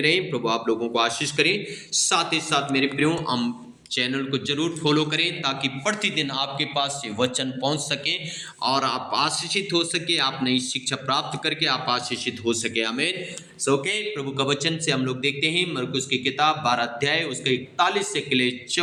रहें। प्रभु आप लोगों को आशीष करें। साथ ही साथ मेरे प्रियो, हम चैनल को जरूर फॉलो करें ताकि प्रतिदिन आपके पास ये वचन पहुंच सके और आप आशीषित हो सके। आप नई शिक्षा प्राप्त करके आप आशीषित हो सके। आमीन। ओके, प्रभु का वचन से हम लोग देखते हैं मरकुस की किताब 12 अध्याय उसके 41 से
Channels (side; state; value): both; identical; correlation 1.00